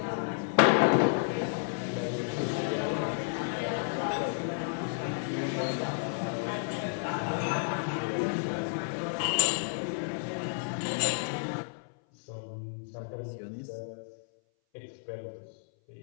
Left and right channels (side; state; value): right; silent; 57 dB below the other